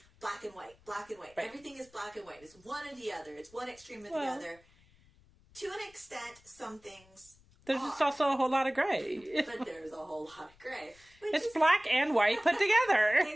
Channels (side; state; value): left; noise; rumble, 29 dB below the sound